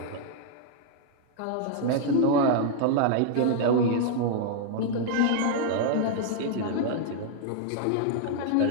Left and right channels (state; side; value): different; both; correlation -0.01